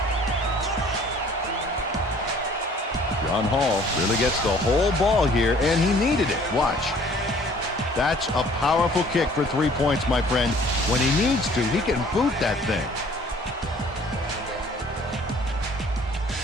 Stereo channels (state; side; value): normal; both; correlation 0.55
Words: John Hall really gets the whole ball here, and he needed it. Watch. That's a powerful kick for 3 points, my friend. When he needs to, he can boot that thing.